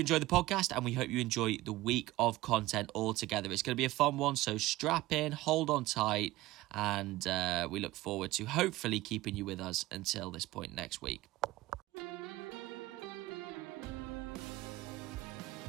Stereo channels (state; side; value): quieter; left; 17.9 dB